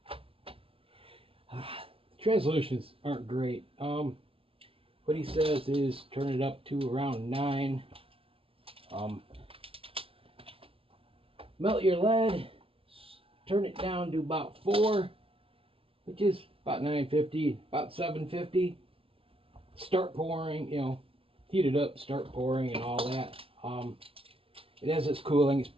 translations aren't great. What he says is turn it up to around 9. Um, Melt your lead, turn it down to about 4, which is about 950, about 750. Start pouring, heat it up, start pouring and all that. And as it's cooling, it's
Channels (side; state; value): left; late; 0.26 ms